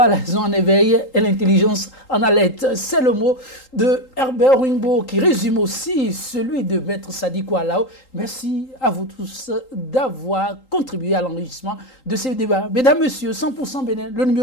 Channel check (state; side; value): late; right; 3.8 ms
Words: la raison en éveil et l'intelligence en alerte. C'est le mot de Herbert Rungbo qui résume aussi celui de Maître Sadiko Alao. Merci à vous tous d'avoir contribué à l'enrichissement de ce débat. Mesdames, Messieurs, 100% Bénin, le